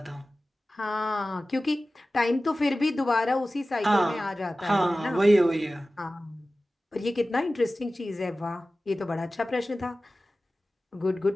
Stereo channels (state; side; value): normal; both; correlation 0.96